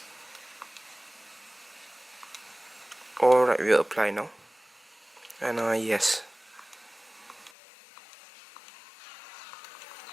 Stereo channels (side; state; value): right; drops out; at 7.5 s